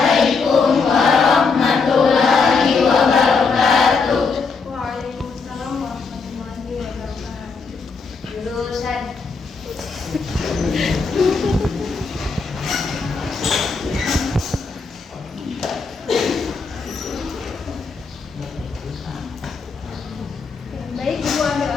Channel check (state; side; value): quieter; right; 4.8 dB